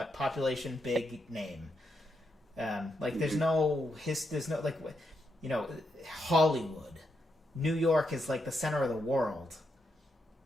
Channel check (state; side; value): normal; both; correlation 0.82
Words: population, big name. There's no Hollywood. New York is like the center of the world.